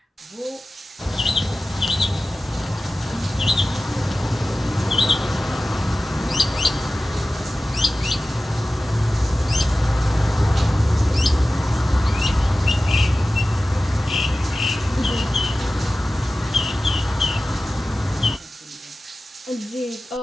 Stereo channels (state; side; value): normal; both; correlation 0.95